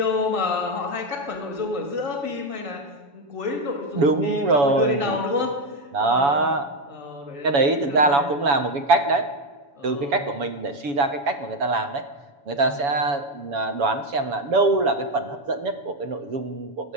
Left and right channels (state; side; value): late; left; 7.1 ms